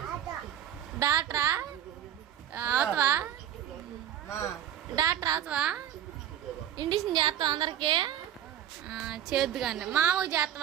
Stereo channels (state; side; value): quieter; left; 10.5 dB